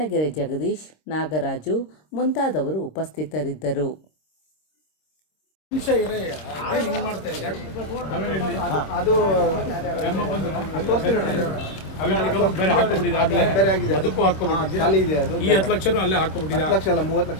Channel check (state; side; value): late; right; 26 ms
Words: ಜಗದೀಶ್, ನಾಗರಾಜು ಮುಂತಾದವರು ಉಪಸ್ಥಿತರಿದ್ದರು.